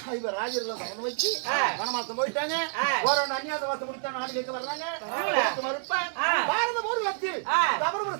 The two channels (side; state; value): left; silent; digital silence